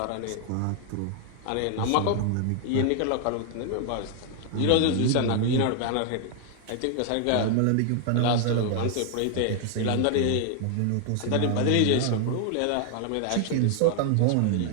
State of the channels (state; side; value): different; both; correlation 0.00